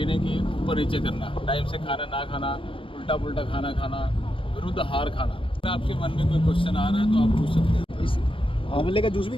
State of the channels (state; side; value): late; right; 0.25 ms